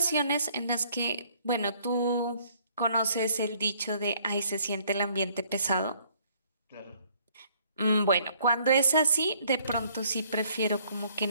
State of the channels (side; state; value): both; inverted; correlation -0.63